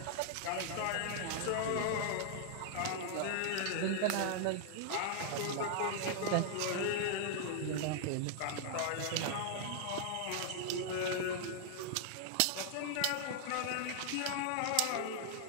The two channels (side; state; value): both; different; correlation -0.01